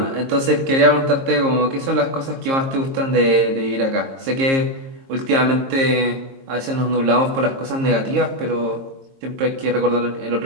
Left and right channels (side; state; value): left; late; 22 ms